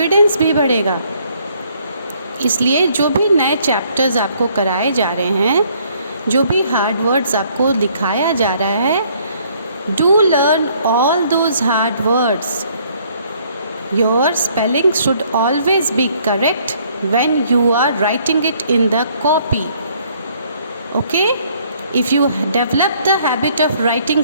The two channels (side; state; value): both; inverted; correlation -0.64